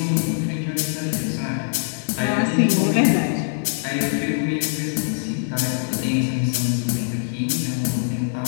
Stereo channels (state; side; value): silent; right; 64 dB below the other